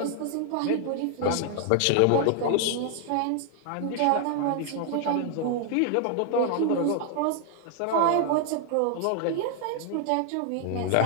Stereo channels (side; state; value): both; different; correlation 0.00